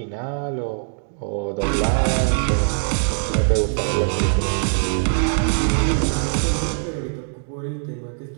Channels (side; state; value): left; silent; 64 dB below the other